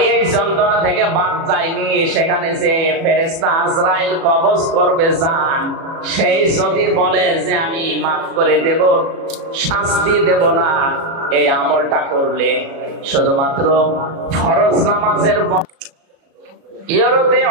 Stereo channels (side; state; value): left; late; 36 ms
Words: এই যন্ত্রণা থেকে বাদ যায়নি। সেখানে যে ফেরেশতা আজরাইল কবজ করবে জান, সেই যদি বলে যে আমি মাফ করে দেব, শাস্তি দেব না, এই আমলটা করলে শুধুমাত্র ফরজ নামাজের